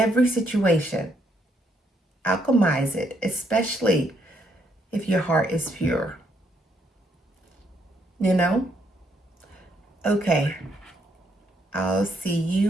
situation, alchemize it, especially if your heart is pure. You know? Okay. I'll see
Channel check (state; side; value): normal; both; correlation 0.73